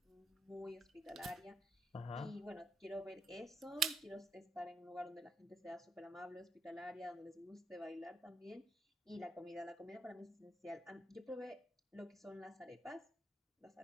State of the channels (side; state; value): both; normal; correlation 0.78